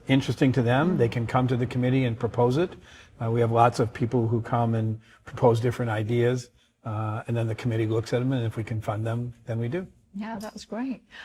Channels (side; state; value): both; identical; correlation 1.00